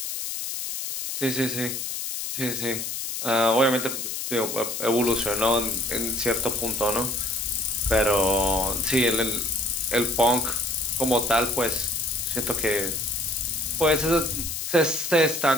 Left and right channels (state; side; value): noise; left; hiss, 4 dB below the sound